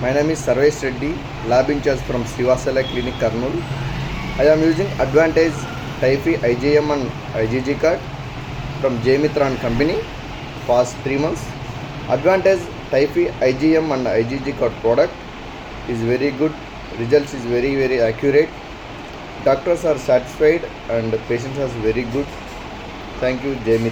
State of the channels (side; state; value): both; identical; correlation 1.00